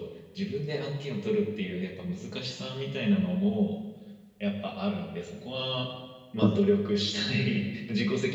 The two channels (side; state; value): both; identical; correlation 1.00